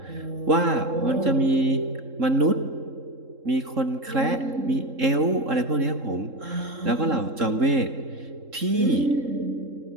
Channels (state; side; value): late; left; 3.7 ms